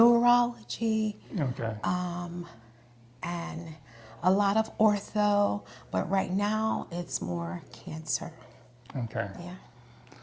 and a lot of ortho. But right now, it's more cancer. Okay. Yeah.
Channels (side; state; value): both; identical; correlation 1.00